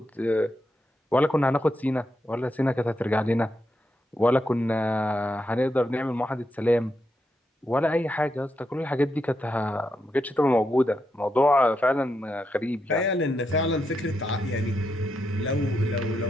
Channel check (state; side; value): normal; both; correlation 0.83